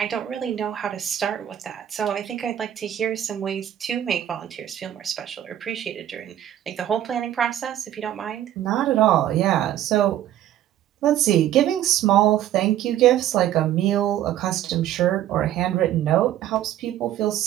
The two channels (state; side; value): quieter; left; 11.9 dB